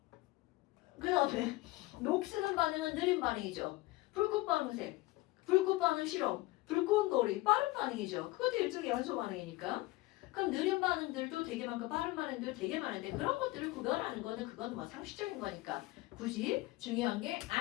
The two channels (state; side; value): quieter; right; 19.9 dB